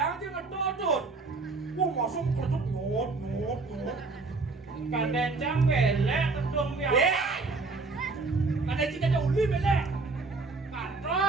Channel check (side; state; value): left; quieter; 3.8 dB